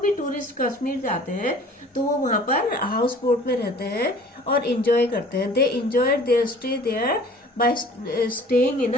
टूरिस्ट कश्मीर जाते हैं तो वो वहां पर हाउस बोट में रहते हैं और एंजॉय करते हैं. They enjoy their stay there by staying in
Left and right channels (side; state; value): both; normal; correlation 0.48